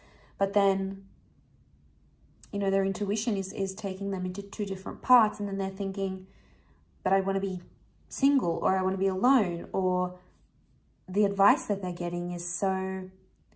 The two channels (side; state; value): both; identical; correlation 1.00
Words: But then, you know, their intuition is taking them into 2 different parts. And then they're thinking, but I want to be single, or I want to be alone, or the advice that they're getting is so